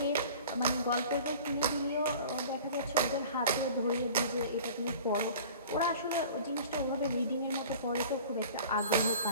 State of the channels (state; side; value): inverted; both; correlation -0.43